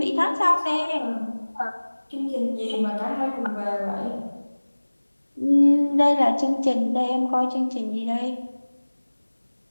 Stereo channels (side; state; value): both; inverted; correlation -1.00